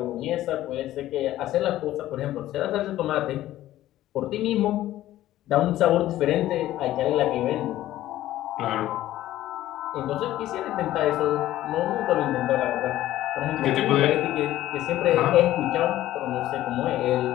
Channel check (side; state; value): right; quieter; 14.3 dB